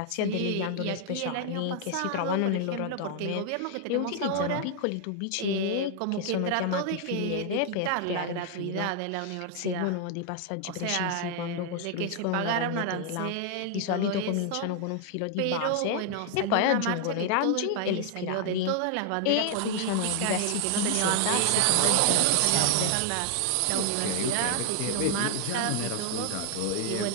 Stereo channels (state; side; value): different; both; correlation 0.00